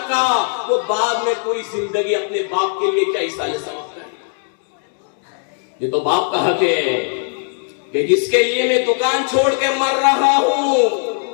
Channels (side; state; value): right; silent; 56 dB below the other